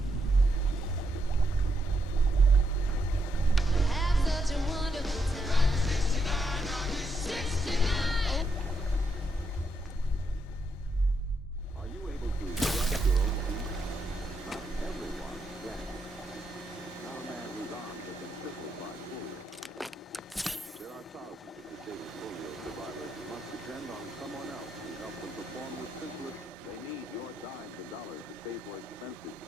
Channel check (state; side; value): normal; both; correlation 0.79